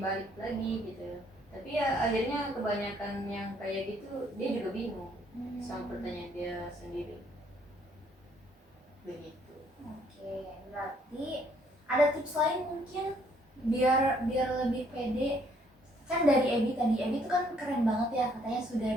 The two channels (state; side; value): normal; both; correlation 0.66